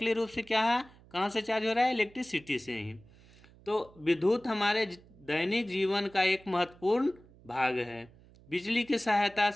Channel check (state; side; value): noise; right; hum, 25 dB below the sound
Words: रूप से क्या है, कहाँ से चार्ज हो रहा है, इलेक्ट्रिसिटी से ही। तो विद्युत हमारे दैनिक जीवन का एक महत्वपूर्ण भाग है। बिजली की सहायता